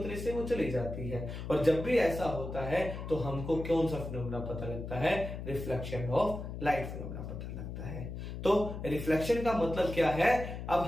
से वो चली जाती है। और जब भी ऐसा होता है तो हमको कौन सा फिनोमेना पता लगता है, रिफ्लेक्शन ऑफ लाइट फिनोमेना पता लगता है। तो रिफ्लेक्शन का मतलब क्या है, अब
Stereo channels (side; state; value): left; noise; hum, 7 dB below the sound